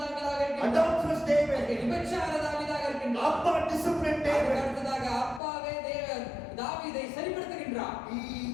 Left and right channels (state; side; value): drops out; right; at 5.4 s